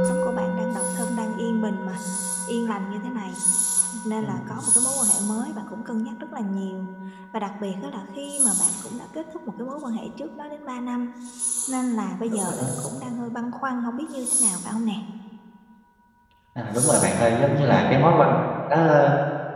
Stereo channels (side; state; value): both; identical; correlation 1.00